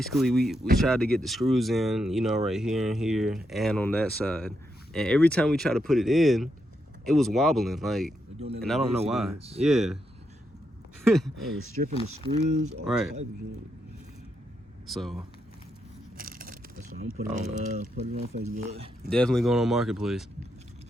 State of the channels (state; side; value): normal; both; correlation 0.82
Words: we tried to get the screws in, you know, right here and here, and on that side. And every time we try to put it in, it was wobbling, like, and I don't know why. Yeah. I was stripping the screws. All Right. type of shit. So That's why I'm putting it on Facebook. definitely going on Marketplace.